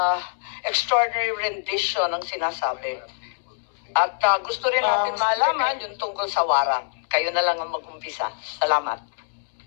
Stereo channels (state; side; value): silent; right; digital silence